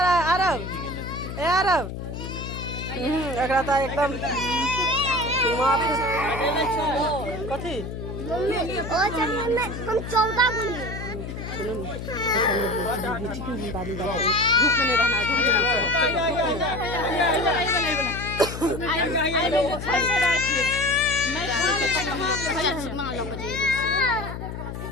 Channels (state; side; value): noise; left; hum, 7 dB below the sound